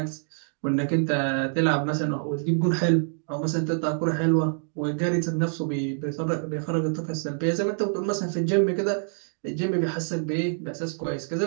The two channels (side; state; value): left; silent; digital silence